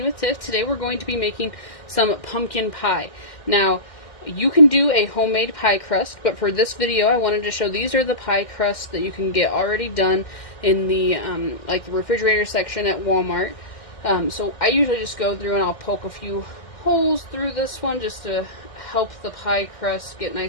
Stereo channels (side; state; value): right; late; 1.6 ms